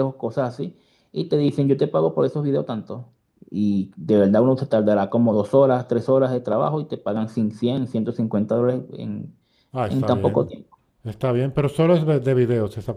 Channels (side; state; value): both; identical; correlation 1.00